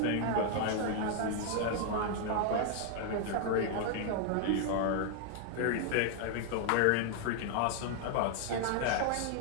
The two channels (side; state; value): both; different; correlation 0.00